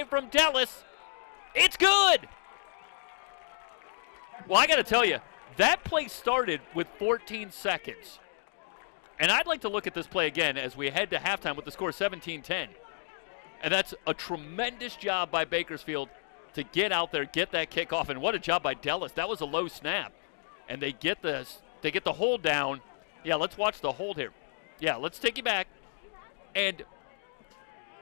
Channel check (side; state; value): right; silent; digital silence